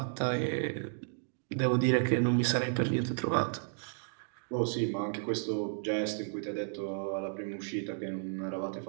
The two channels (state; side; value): silent; left; digital silence